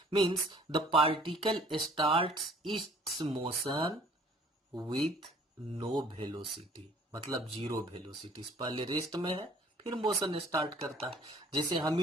Means the particle starts its motion with no velocity, मतलब 0 वेलोसिटी। पहले रेस्ट में है फिर मोशन स्टार्ट करता है। जैसे हम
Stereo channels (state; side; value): normal; both; correlation 0.55